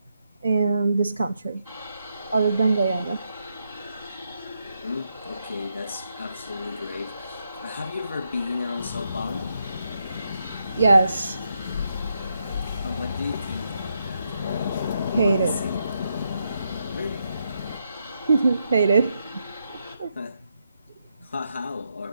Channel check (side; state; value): both; inverted; correlation -0.81